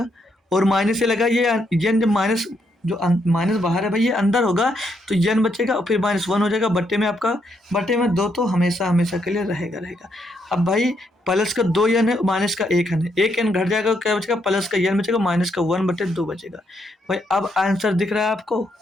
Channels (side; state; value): both; normal; correlation 0.76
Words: और माइनस से लगा ये n, जब माइनस जो माइनस बाहर है भाई ये अंदर होगा तो n बचेगा और फिर -1 हो जाएगा। बट्टे में आपका, बट्टे में 2 तो हमेशा हमेशा के लिए रहेगा। अब भाई प्लस का 2n है, माइनस का 1n है, 1n घट जाएगा, क्या बचेगा प्लस का n बचेगा, माइनस का 1/2 बचेगा भाई। अब आंसर दिख रहा है आपको,